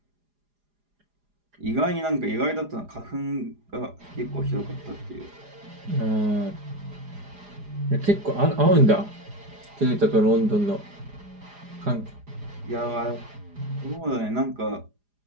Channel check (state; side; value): late; left; 4.9 ms